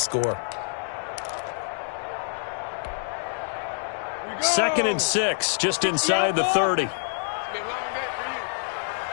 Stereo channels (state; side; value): silent; right; digital silence